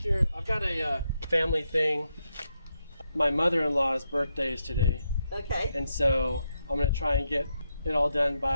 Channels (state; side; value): inverted; both; correlation -0.83